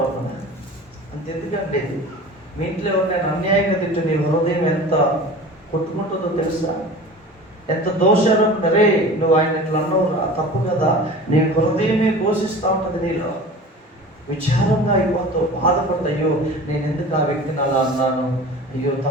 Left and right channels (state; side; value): normal; both; correlation 0.38